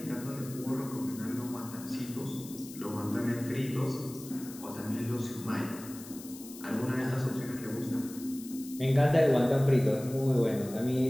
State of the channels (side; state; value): left; noise; hiss, 15 dB below the sound